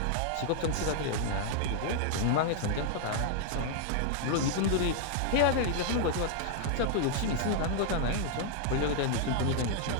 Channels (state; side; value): different; both; correlation 0.00